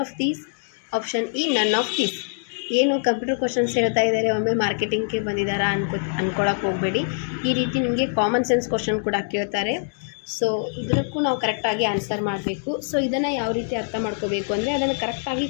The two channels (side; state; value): right; silent; digital silence